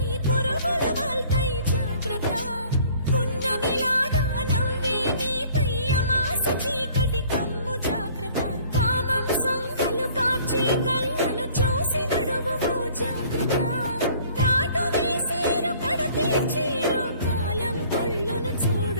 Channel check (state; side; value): inverted; both; correlation -0.54